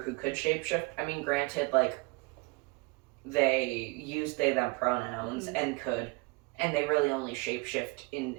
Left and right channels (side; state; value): left; quieter; 28.2 dB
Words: who could shapeshift. I mean, granted, like, they used they them pronouns and they really only shapeshifted